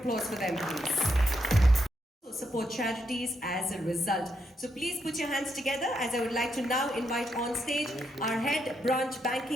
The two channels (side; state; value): both; normal; correlation 0.79